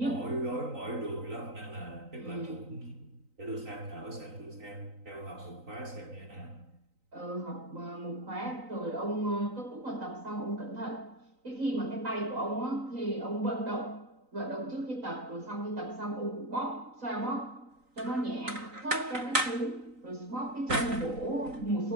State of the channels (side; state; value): left; late; 3.9 ms